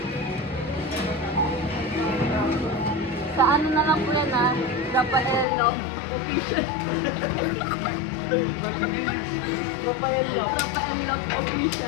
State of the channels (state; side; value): drops out; right; at 5.5 s